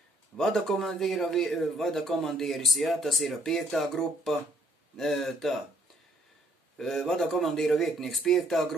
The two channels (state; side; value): normal; both; correlation 0.66